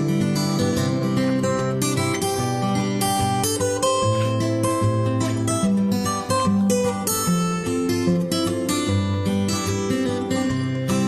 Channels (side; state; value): both; identical; correlation 1.00